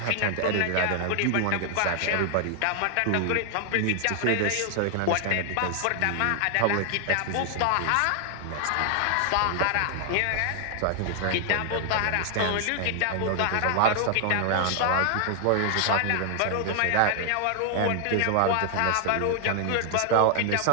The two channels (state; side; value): different; both; correlation 0.00